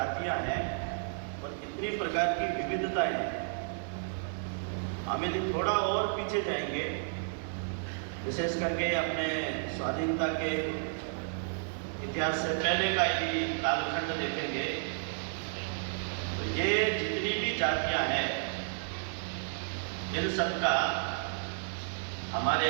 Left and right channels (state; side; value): silent; left; digital silence